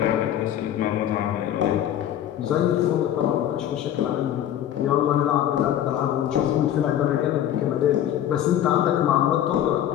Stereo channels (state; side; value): quieter; right; 11.1 dB